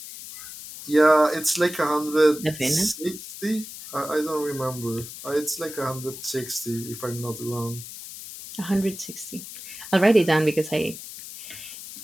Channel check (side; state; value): left; noise; hiss, 12 dB below the sound